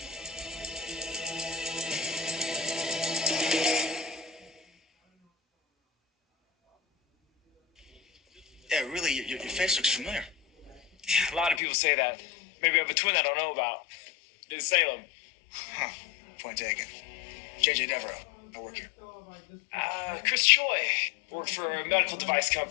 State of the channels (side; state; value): right; drops out; at 11.6 s